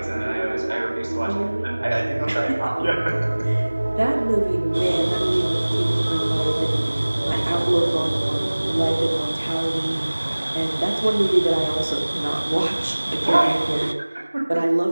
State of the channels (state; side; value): inverted; both; correlation -1.00